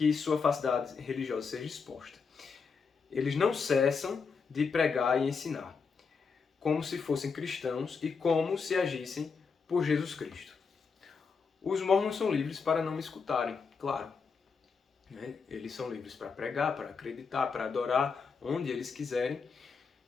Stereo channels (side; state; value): right; quieter; 5.3 dB